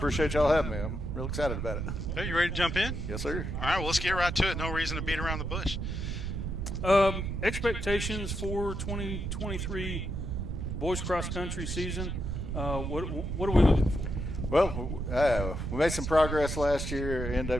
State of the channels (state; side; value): noise; right; rumble, 3 dB below the sound